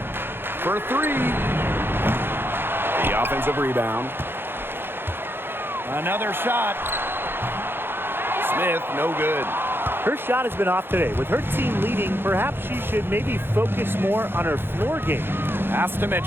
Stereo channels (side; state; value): left; late; 0.10 ms